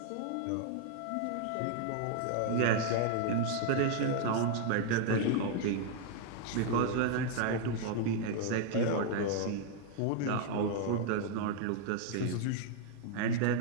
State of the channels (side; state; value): both; different; correlation 0.00